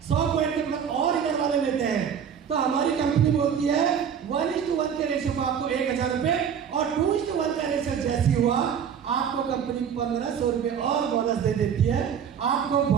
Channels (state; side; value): quieter; left; 7.9 dB